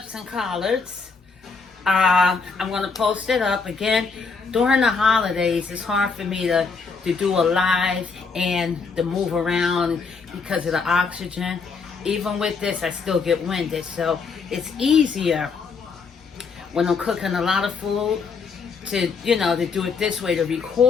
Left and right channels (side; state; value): right; quieter; 5.0 dB